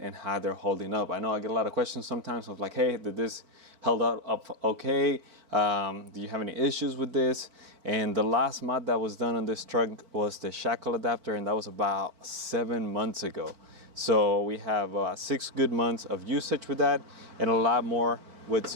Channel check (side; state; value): left; late; 4.5 ms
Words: how they're holding up. I know I get a lot of questions sometimes of like, hey, did this held up okay? Do you have any issues with this? And the last mod that was done on this truck was the shackle adapter, and that was about 7 months ago. So we have 6 good months of usage with that, and a lot more with